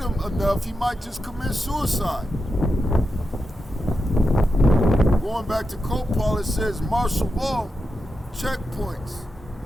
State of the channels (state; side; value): normal; both; correlation 0.88